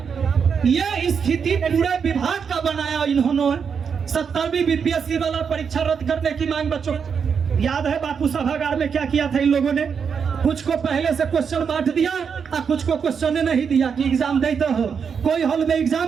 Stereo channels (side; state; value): left; quieter; 6.5 dB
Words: ये स्थिति पूरे विभाग का बनाया इन्होंने। 70वीं बीपीएससी वाला परीक्षा रद्द करने की मांग बच्चों याद है बापू सभागार में क्या किया था इन लोगों ने? कुछ को पहले से क्वेश्चन बांट दिया और कुछ को क्वेश्चन नहीं दिया कि एग्जाम देते हो। कोई हॉल में